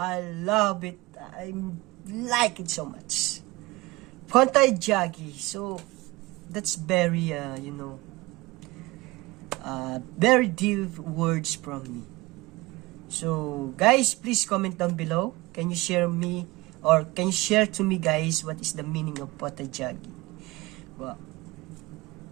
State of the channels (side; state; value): left; quieter; 21.2 dB